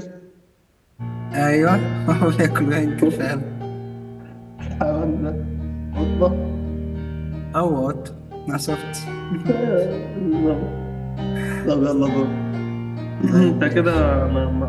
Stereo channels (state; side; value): identical; both; correlation 1.00